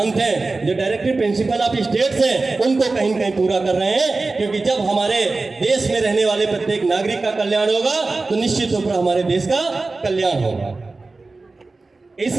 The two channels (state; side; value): quieter; left; 3.6 dB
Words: हैं, जो डायरेक्टिव प्रिंसिपल ऑफ स्टेट्स हैं, उनको कहीं न कहीं पूरा कर रहे हैं। क्योंकि जब हमारे देश में रहने वाले प्रत्येक नागरिक का कल्याण होगा तो निश्चित रूप से हमारे देश का कल्याण होगा। इस